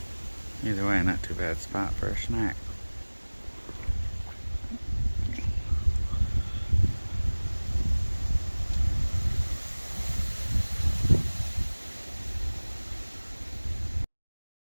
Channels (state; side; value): inverted; both; correlation -1.00